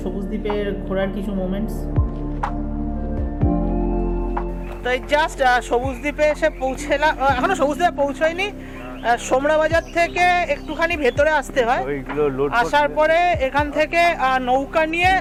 সবুজ দ্বীপের ঘোরার কিছু মোমেন্টস। তো এই জাস্ট সবুজ দ্বীপে এসে পৌঁছলাম, এখনো সবুজ দ্বীপে পৌঁছায়নি। সোমরা বাজার থেকে একটুখানি ভেতরে আসতে হয়, আসার পরে এখান থেকে নৌকা নিয়ে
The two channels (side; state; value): both; identical; correlation 1.00